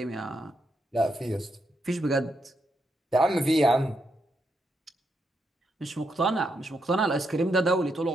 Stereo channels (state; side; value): normal; both; correlation 0.81